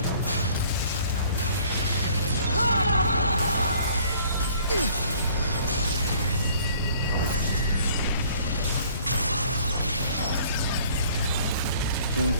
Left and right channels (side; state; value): both; inverted; correlation -0.55